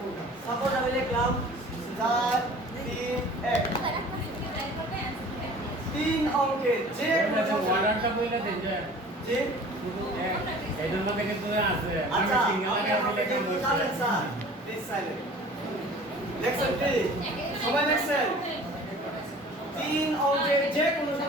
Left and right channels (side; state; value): both; normal; correlation 0.45